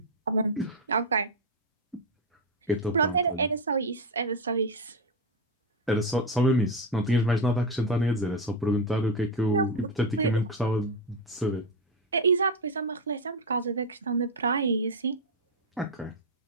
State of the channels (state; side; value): normal; both; correlation 0.09